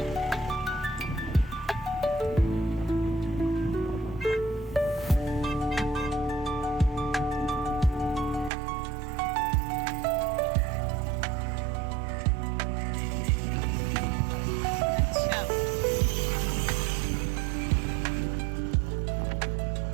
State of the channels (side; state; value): left; drops out; at 8.5 s